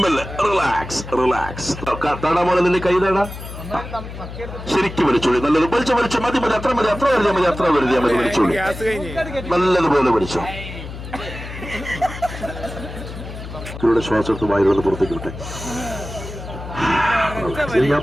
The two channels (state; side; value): noise; left; hum, 11 dB below the sound